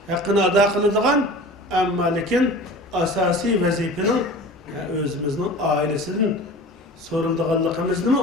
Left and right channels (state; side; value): normal; both; correlation 0.38